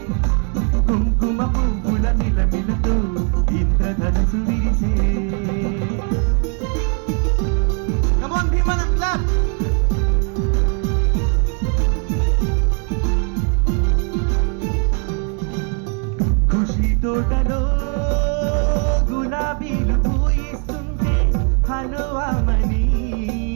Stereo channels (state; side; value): quieter; left; 37.9 dB